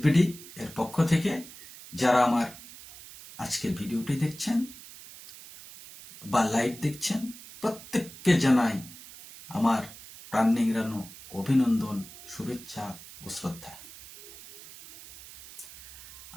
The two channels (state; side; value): noise; right; hiss, 17 dB below the sound